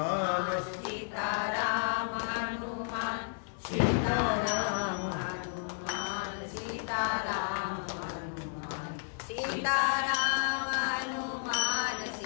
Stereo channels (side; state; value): right; silent; digital silence